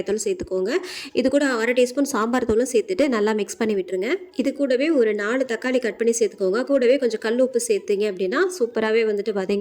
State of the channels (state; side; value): identical; both; correlation 1.00